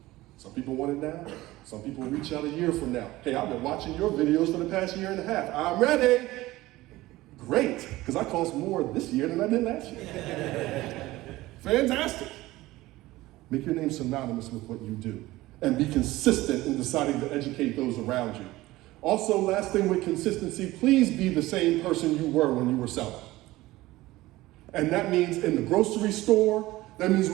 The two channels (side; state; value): left; quieter; 18.1 dB